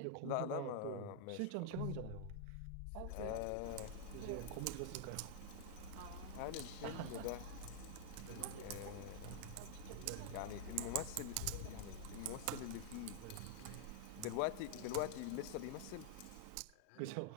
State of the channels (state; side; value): different; both; correlation -0.01